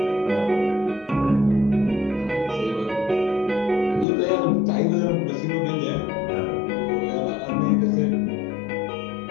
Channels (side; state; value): right; drops out; at 4.0 s